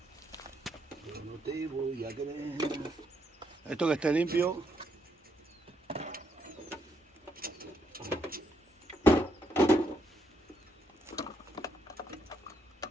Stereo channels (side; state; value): both; normal; correlation 0.76